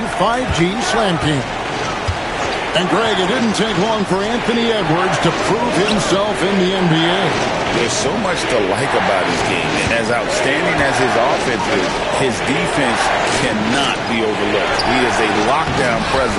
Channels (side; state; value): both; identical; correlation 1.00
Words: 5G Slam King. And, Greg, it didn't take long for Anthony Edwards to prove himself in the NBA. There's so much to like about his game. And as outstanding as his offense is, his defense cannot be overlooked. He is a lockdown